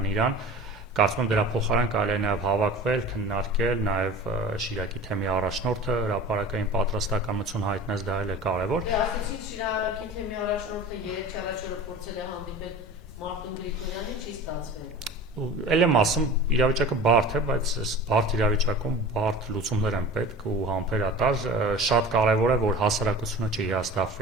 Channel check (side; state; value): both; normal; correlation 0.38